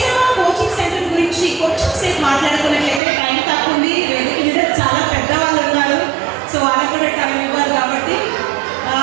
కోచింగ్ సెంటర్ గురించి కొంచెం సేపు మాట్లాడుకున్నట్లయితే టైం తక్కువ ఉంది, వేదిక మీద చాలా పెద్దవాళ్ళు ఉన్నారు, సో వాళ్ళకి కూడా టైం ఇవ్వాలి. కాబట్టి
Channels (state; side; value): drops out; left; at 3.0 s